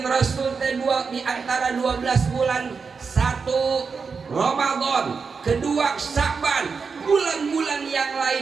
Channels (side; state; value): left; quieter; 5.2 dB